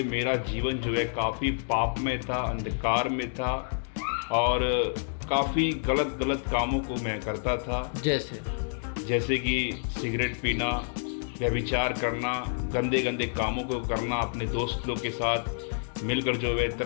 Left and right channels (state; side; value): silent; right; digital silence